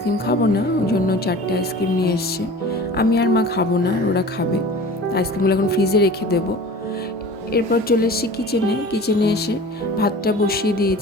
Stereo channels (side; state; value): both; normal; correlation 0.40